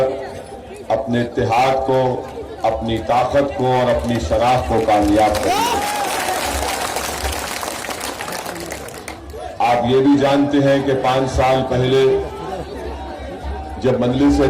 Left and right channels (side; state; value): both; identical; correlation 1.00